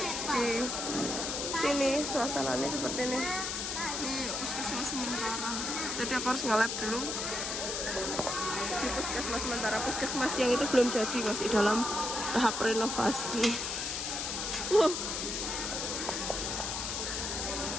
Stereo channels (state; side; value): noise; left; hiss, 2 dB below the sound